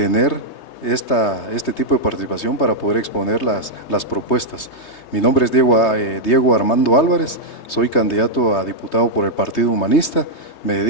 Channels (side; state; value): right; late; 3.2 ms